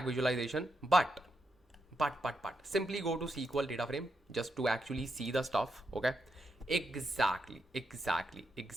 visualization, but simply go to SQL data frame just to actually see the stuff. Okay, exactly.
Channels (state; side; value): normal; both; correlation 0.83